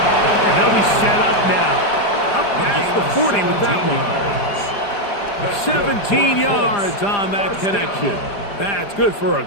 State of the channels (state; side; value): late; right; 4.9 ms